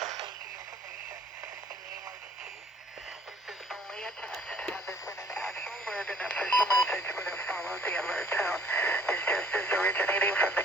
originating from the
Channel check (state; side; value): normal; both; correlation 0.58